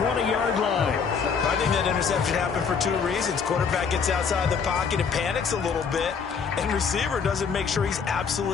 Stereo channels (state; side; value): quieter; right; 6.1 dB